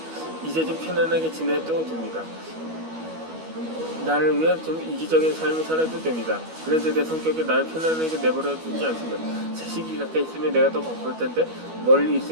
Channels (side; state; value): left; late; 12 ms